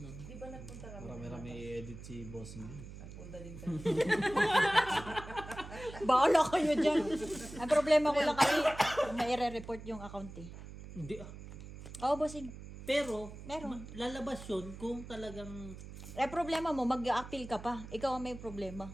Di ba nagpunta kami? Marami-rami i-edit si boss niya. Nagpunta din kami. Baala kayo dyan. Ang problema ko lang kasi, may report yung account eh. Hindi ah. Oo, bossing. Pero, Meron. lalabas yun kung talagang Problema mo, mag-a-appeal ka pa. Ikaw ang may problema.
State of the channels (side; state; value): right; noise; hum, 13 dB below the sound